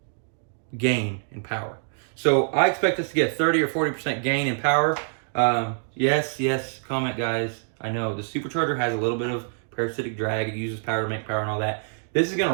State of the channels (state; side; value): silent; left; digital silence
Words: gain in power. So I expect us to get 30 or 40% gain in power. Yes, comment guys. I know the supercharger has a little bit of parasitic drag. It uses power to make power and all that. This is going